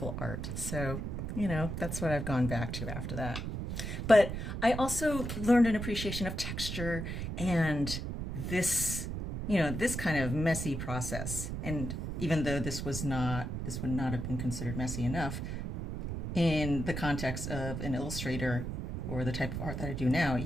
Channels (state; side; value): noise; right; rumble, 4 dB below the sound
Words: art. So, you know, that's what I've gone back to after that. But I also learned an appreciation of texture and this, this kind of messy process. And even though this would not have been considered messy enough in the context of an illustrator or the type of art that I do now,